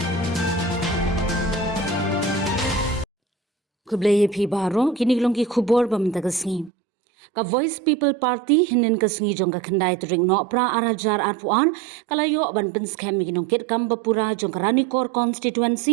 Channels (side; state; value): left; drops out; at 6.7 s